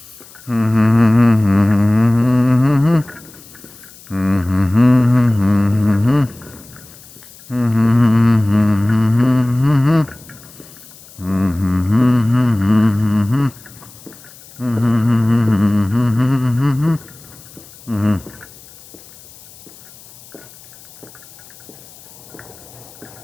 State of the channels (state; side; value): noise; left; hiss, 22 dB below the sound